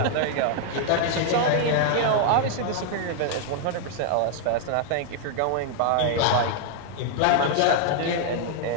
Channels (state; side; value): different; both; correlation 0.00